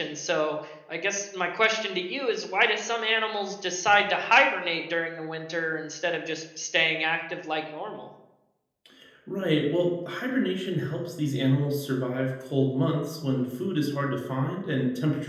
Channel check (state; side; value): identical; both; correlation 1.00